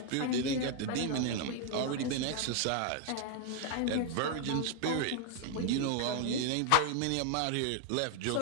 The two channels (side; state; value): both; different; correlation 0.00